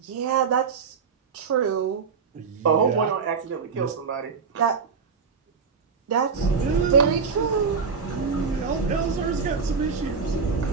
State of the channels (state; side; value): quieter; left; 5.5 dB